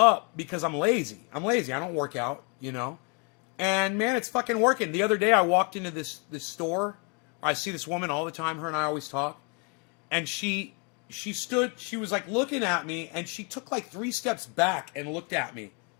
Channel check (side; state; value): right; quieter; 35.0 dB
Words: because I'm lazy. I'm lazy. I don't work out, you know? And, man, it's fucking working. The other day I walked into this store. I see this woman all the time. Her and I always talk. And she was, like, looking at me, and she took, like, 3 steps back and looked at me.